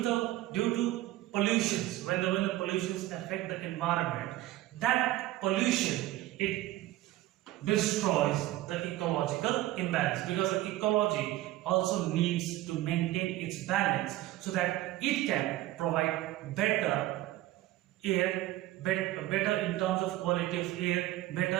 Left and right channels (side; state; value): left; quieter; 15.8 dB